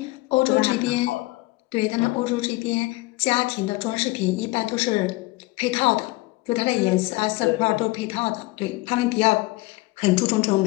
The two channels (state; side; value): quieter; right; 21.5 dB